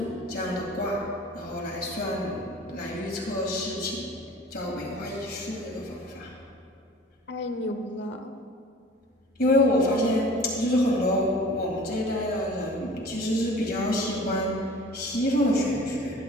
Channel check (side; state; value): both; normal; correlation 0.44